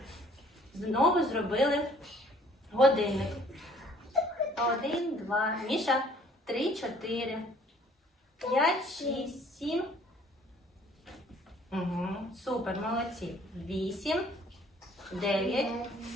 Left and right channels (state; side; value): normal; both; correlation 0.57